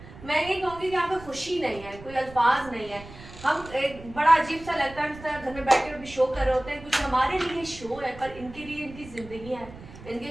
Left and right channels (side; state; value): right; noise; rumble, 17 dB below the sound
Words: मैं ये कहूँगी कि यहाँ पे खुशी नहीं है, कोई अल्फाज नहीं है। हम एक बड़ा अजीब सा लगता है, इस तरह घर में बैठ के भी शो कर रहे होते हैं, कुछ हमारे लिए शो है पर इनके लिए इनकी जिंदगी है, इनके